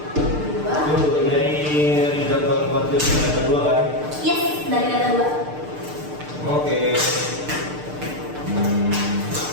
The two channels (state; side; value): late; left; 6.7 ms